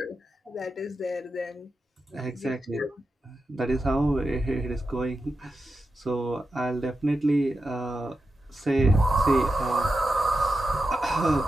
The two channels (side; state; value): both; normal; correlation 0.90